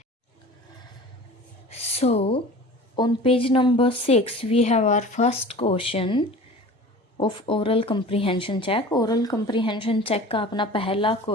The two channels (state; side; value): normal; both; correlation 0.40